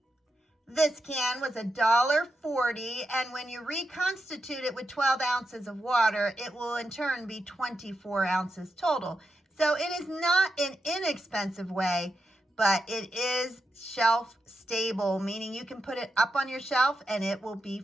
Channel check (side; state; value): both; normal; correlation 0.86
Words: This can was $1.40, and when you reconstitute it with 12 ounces of water, it will in turn be 24 ounces total. So it is not an inexpensive way, but it is shelf stable, meaning you can put it up on your shelf and it will be